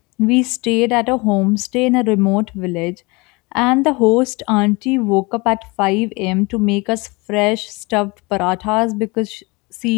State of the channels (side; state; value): right; quieter; 26.0 dB